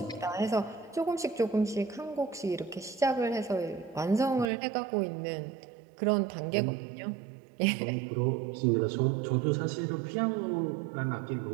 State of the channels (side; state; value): left; drops out; at 4.5 s